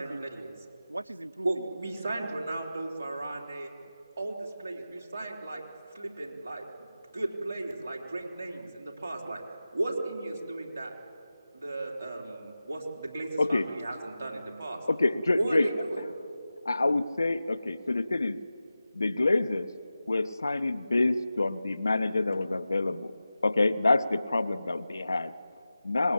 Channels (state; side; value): inverted; both; correlation -0.94